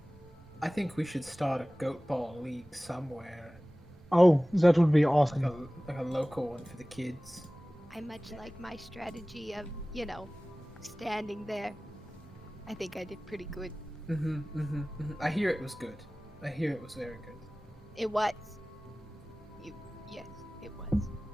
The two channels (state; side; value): normal; both; correlation 0.98